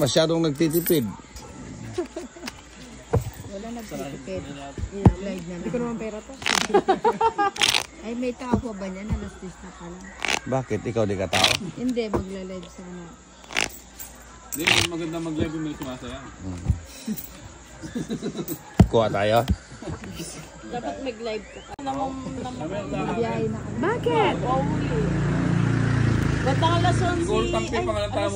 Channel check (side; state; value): both; identical; correlation 1.00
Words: nagtitipid. Wala nagtitipid. Live na Hindi ko naman pera to. Ay, may tao pa ba niyan? Alas 10 na pala. Bakit? Ikaw di ka tao? Hindi, magla-live sana. Hindi, maganda mag-live yung may sumasaya. Kuha tayo? Dapat mag-live ka. Biyahe na ka. Bakit? Ba't ang alas 11? Siguro tampi pa nga ng